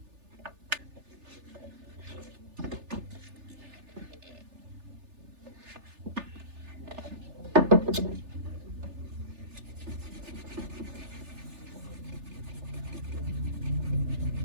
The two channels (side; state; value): left; late; 3.4 ms